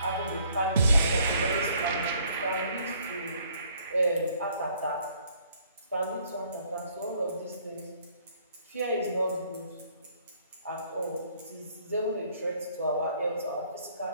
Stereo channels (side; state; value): both; inverted; correlation -0.63